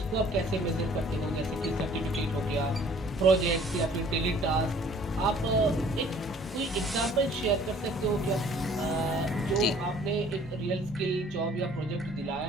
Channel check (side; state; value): both; normal; correlation 0.55